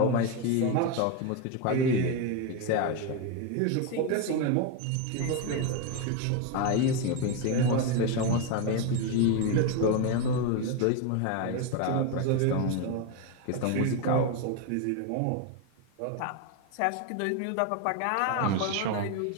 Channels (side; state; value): both; different; correlation 0.02